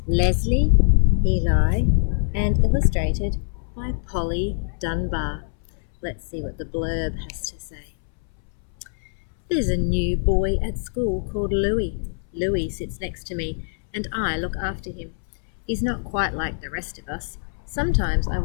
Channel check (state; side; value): silent; right; 63 dB below the other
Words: Leslie Eli and illustrated by Polly Dunbar. Let's see what the blurb has to say. There's a new boy at school called Louis. Louis sits next to me and I look after him. He's not quite like the rest of us. Sometimes I